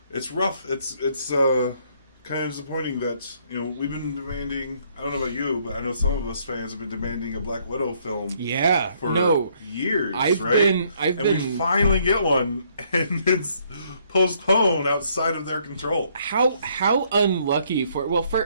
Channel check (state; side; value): inverted; both; correlation -0.67